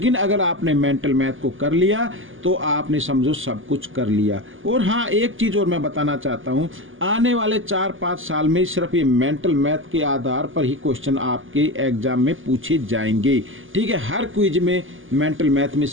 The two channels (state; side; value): late; left; 0.58 ms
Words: अगर आपने मेंटल मैथ को कर लिया तो आपने समझो सब कुछ कर लिया। और हाँ, एक चीज़ और मैं बताना चाहता हूँ, आने वाले 4-5 साल में सिर्फ ये मेंटल मैथ के आधार पर ही क्वेश्चन आपके एग्जाम में पूछे जाएंगे। ठीक है, हर क्विज में मेंटल मैथ में